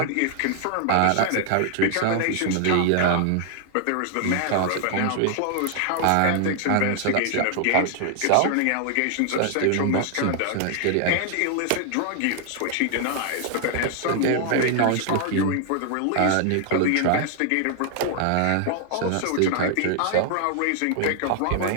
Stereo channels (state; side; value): different; both; correlation 0.00